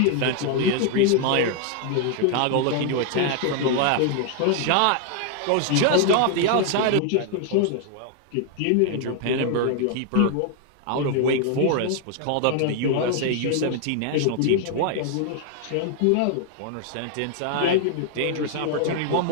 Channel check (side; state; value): both; different; correlation 0.00